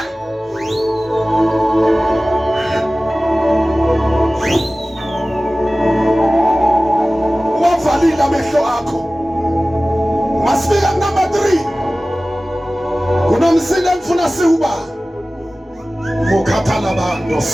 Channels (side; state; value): both; normal; correlation 0.97